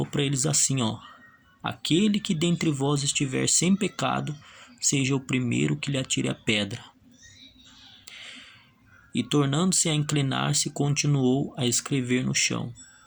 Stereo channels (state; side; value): identical; both; correlation 1.00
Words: para eles assim, ó: aquele que dentre vós estiver sem pecado, seja o primeiro que lhe atire a pedra. E tornando-se a inclinar-se, continuou a escrever no chão.